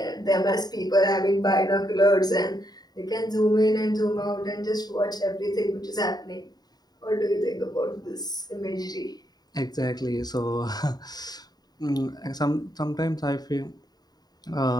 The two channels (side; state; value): right; late; 0.19 ms